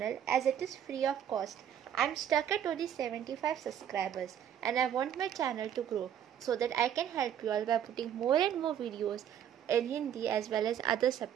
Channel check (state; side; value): quieter; left; 9.6 dB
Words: as it is free of cost. I am stuck at only 75 subscribers and I want my channel to grow so that I can help you all by putting more and more videos in Hindi as well as other